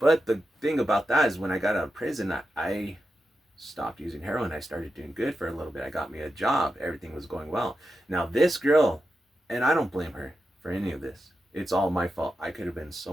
the thing about that is, when I got out of prison, I stopped using heroin. I started doing good for a little bit. I got me a job. Everything was going well. Now this girl, and I don't blame her for any of this. It's all my fault. I could have been so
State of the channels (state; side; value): normal; both; correlation 0.89